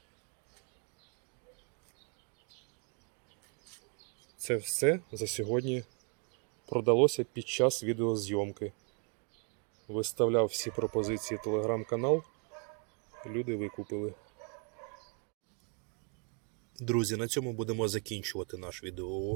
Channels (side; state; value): left; quieter; 38.0 dB